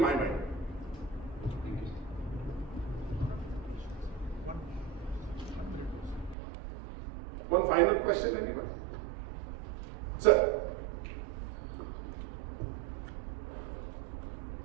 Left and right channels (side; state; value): left; drops out; at 6.4 s